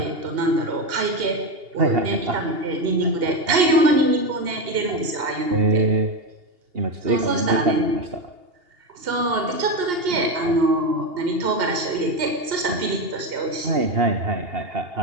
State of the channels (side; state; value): left; late; 2.8 ms